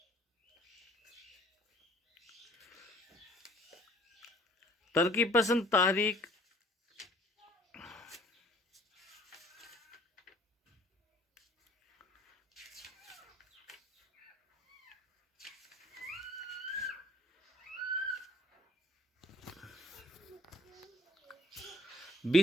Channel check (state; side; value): normal; both; correlation 0.55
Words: ترقی پسند تحریک